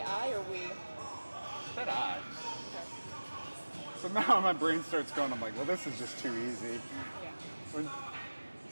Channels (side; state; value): both; inverted; correlation -1.00